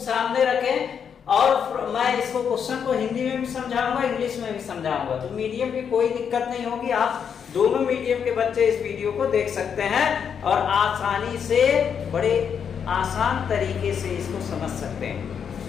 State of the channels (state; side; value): quieter; right; 7.4 dB